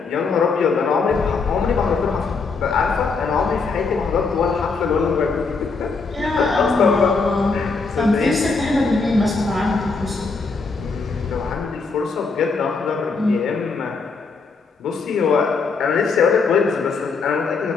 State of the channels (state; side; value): quieter; right; 4.4 dB